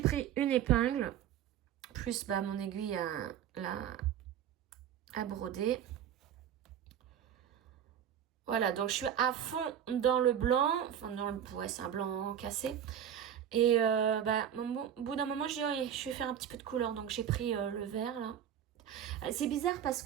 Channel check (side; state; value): left; quieter; 9.5 dB